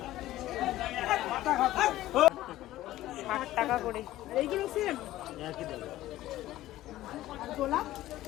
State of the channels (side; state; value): right; quieter; 15.1 dB